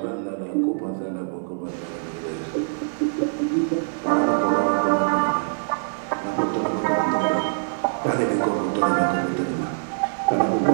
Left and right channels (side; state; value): left; silent; 59 dB below the other